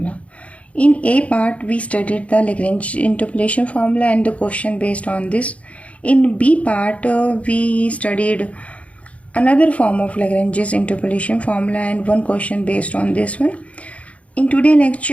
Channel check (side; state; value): right; late; 0.065 ms